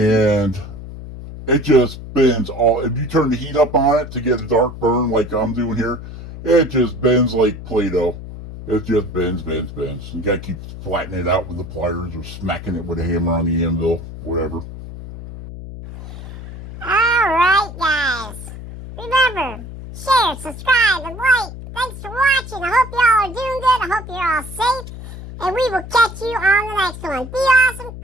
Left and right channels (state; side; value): noise; left; hum, 12 dB below the sound